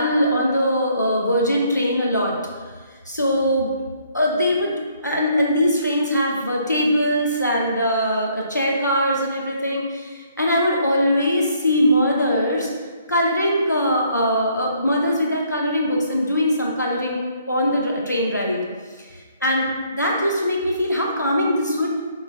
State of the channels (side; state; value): both; inverted; correlation -0.66